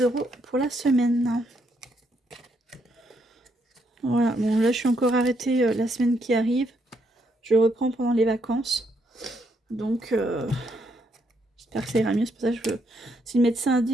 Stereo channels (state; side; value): normal; both; correlation 0.75